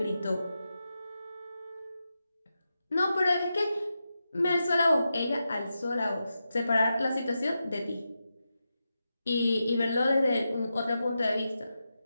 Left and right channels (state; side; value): inverted; both; correlation -0.89